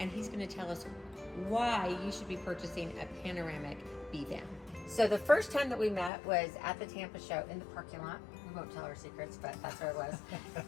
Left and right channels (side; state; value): right; drops out; at 6.1 s